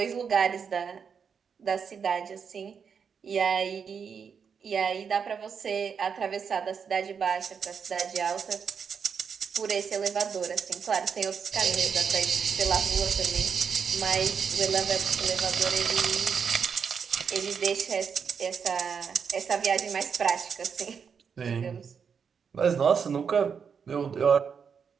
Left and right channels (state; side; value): quieter; left; 6.5 dB